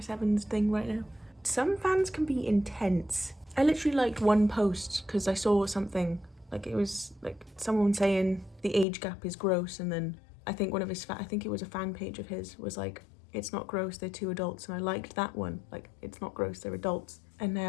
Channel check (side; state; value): right; drops out; at 8.8 s